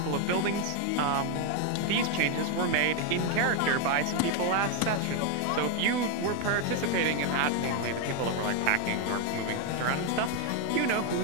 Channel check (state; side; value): different; both; correlation 0.01